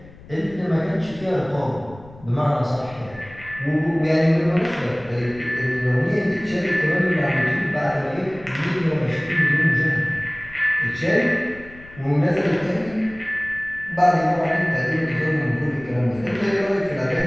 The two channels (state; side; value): noise; left; rumble, 20 dB below the sound